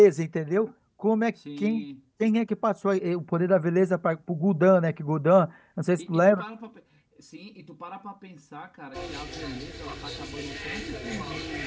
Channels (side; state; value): both; identical; correlation 1.00